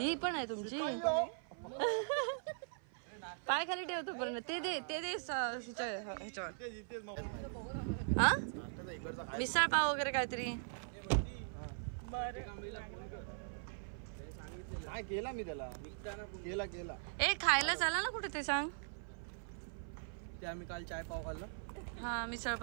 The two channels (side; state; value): left; silent; 51 dB below the other